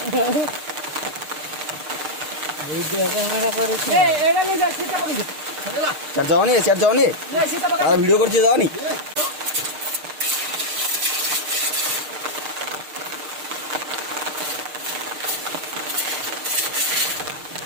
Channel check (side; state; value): left; late; 6.6 ms